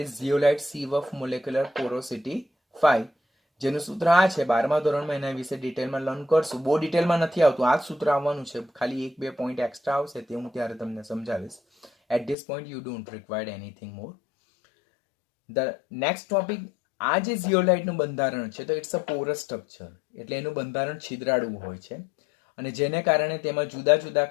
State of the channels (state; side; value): drops out; right; at 12.4 s